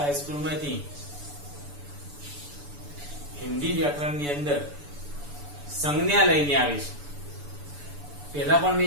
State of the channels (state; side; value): late; left; 6.9 ms